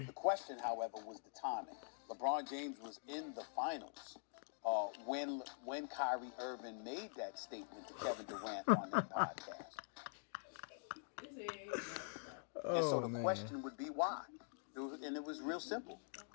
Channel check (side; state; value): right; silent; digital silence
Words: question, however, was the timing. LeBron James was in the finals when Kyrie Irving made that statement to Kevin Durant on that podcast. And so the question would be why. It was real simple.